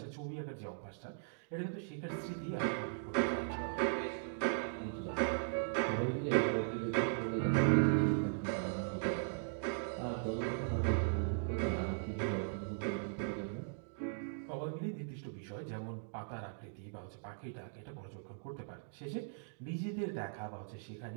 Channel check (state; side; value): silent; left; digital silence